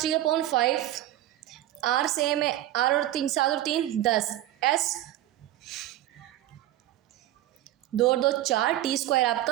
r सेम है, r और 3 7 और 3 10, s 2 और 2 4, t²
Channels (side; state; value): left; quieter; 14.1 dB